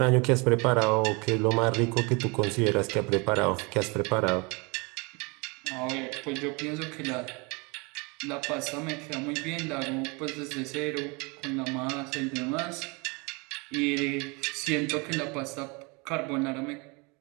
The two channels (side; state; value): left; quieter; 29.0 dB